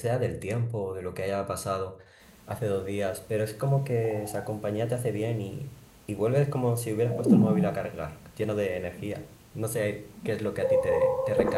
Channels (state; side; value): identical; both; correlation 1.00